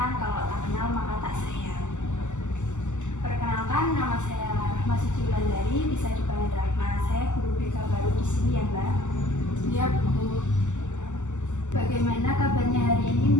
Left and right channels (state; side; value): late; right; 0.84 ms